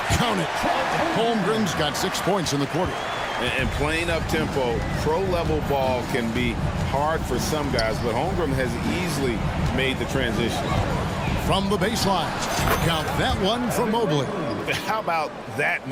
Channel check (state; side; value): identical; both; correlation 1.00